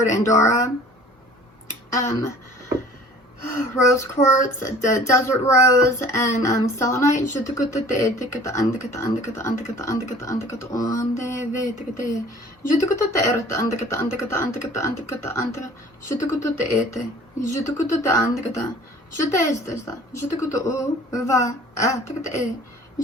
Andorra, rose quartz, the desert rose, and selenite.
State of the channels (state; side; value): normal; both; correlation 0.49